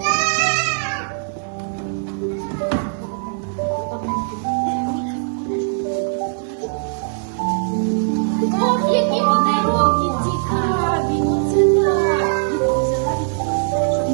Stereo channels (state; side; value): silent; left; 66 dB below the other